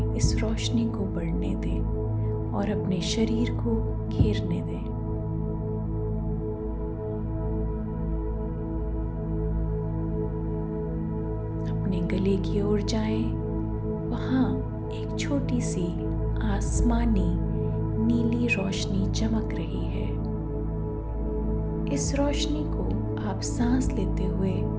इस रोशनी को बढ़ने दें और अपने शरीर को घेरने दें। अपने गले की ओर जाएं, वहाँ एक छोटी सी आसमानी नीली रोशनी चमक रही है। इस रोशनी को आप सांस लेते हुए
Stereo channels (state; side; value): identical; both; correlation 1.00